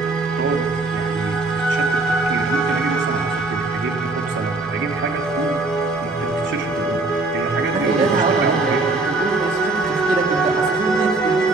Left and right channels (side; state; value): left; quieter; 3.3 dB